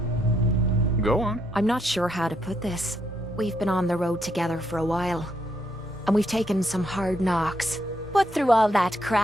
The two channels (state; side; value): normal; both; correlation 0.76